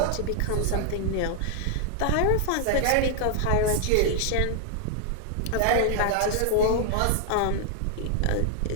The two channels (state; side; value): different; both; correlation 0.00